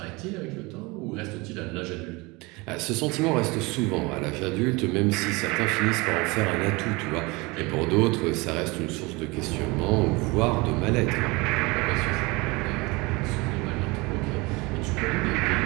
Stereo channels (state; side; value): quieter; left; 24.8 dB